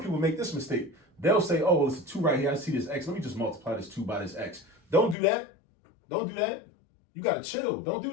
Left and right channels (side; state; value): right; drops out; at 5.2 s